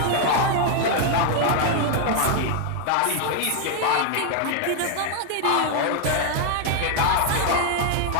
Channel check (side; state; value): both; different; correlation 0.00